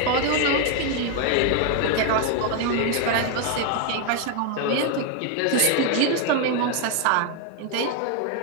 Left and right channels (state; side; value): different; both; correlation 0.01